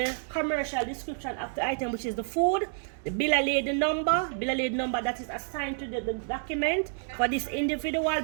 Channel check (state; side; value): silent; left; 59 dB below the other